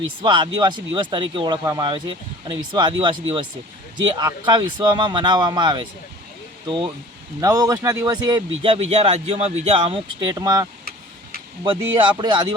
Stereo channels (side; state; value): both; normal; correlation 0.44